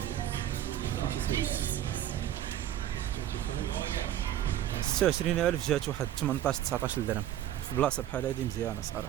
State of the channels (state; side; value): quieter; left; 11.8 dB